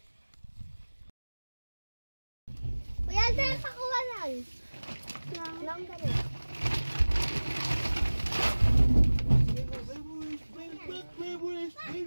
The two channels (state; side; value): inverted; both; correlation -1.00